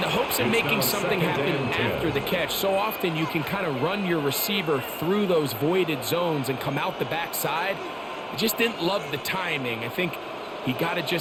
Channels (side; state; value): both; identical; correlation 1.00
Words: the hopes of making something happen after the catch, so often you can kind of run your receiver through those voided zones and come out the backside. I just didn't love the timing. I think he got to